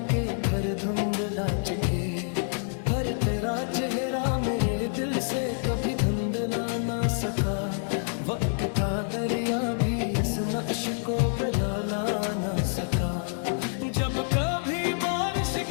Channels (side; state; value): right; silent; digital silence